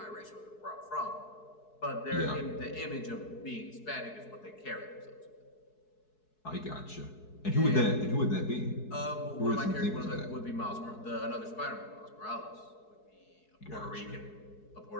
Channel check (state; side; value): late; right; 4.7 ms